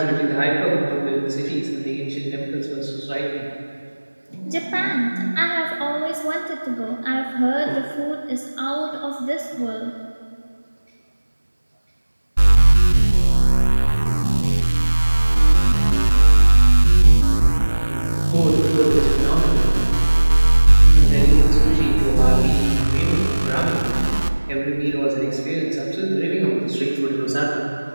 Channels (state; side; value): inverted; both; correlation -1.00